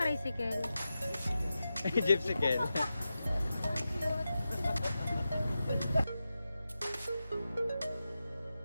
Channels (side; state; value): both; inverted; correlation -0.92